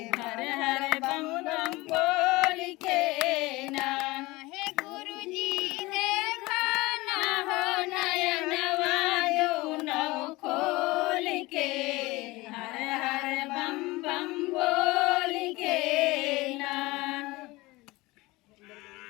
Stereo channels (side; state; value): right; quieter; 21.3 dB